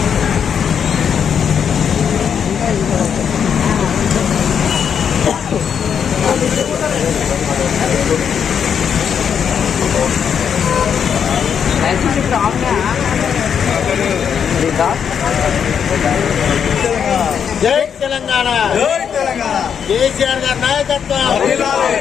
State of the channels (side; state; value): right; quieter; 7.6 dB